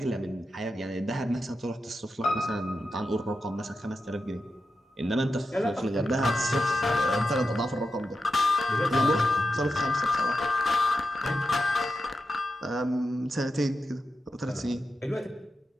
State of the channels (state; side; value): normal; both; correlation 0.90